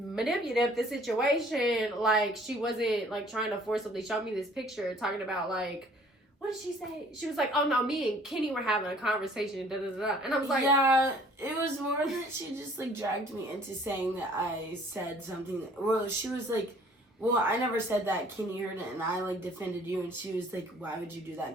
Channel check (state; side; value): normal; both; correlation 0.56